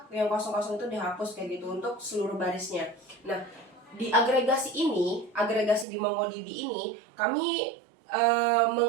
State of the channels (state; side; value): drops out; left; at 5.9 s